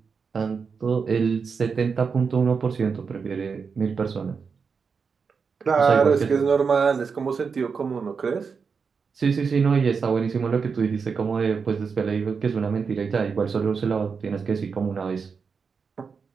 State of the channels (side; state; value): left; quieter; 5.6 dB